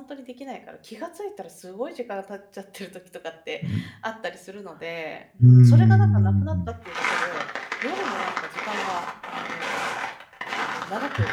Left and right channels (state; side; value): identical; both; correlation 1.00